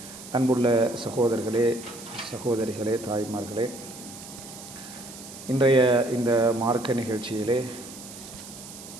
அன்புள்ள சகோதரர்களே, சகோதரிகளே, தாய்மார்களே, இன்றைய இந்த மார்க்க நிகழ்ச்சியிலே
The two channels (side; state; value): right; noise; hiss, 15 dB below the sound